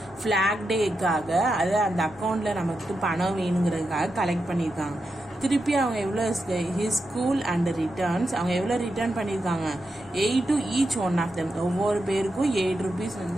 ஃபிளாக் டேக்காக, அது அந்த அக்கௌண்ட்ல நமக்கு பணம் வேணுங்கிறதுக்காக கலெக்ட் பண்ணியிருக்காங்க. திருப்பி அவங்க எவ்வளோ ஹிஸ் ஸ்கூல் அண்ட் ரிட்டர்ன்ஸ், அவங்க எவ்வளோ ரிட்டர்ன் பண்ணியிருக்காங்க, 8 to each one of them. ஒவ்வொரு பேருக்கும் 8 rupees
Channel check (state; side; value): normal; both; correlation 0.87